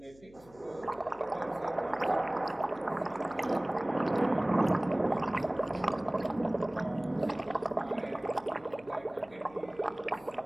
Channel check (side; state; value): left; noise; hum, 25 dB below the sound